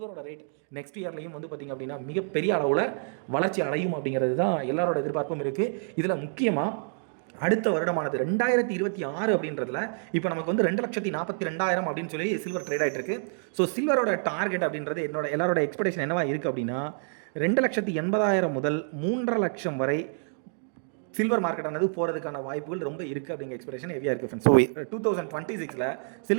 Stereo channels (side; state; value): left; silent; 59 dB below the other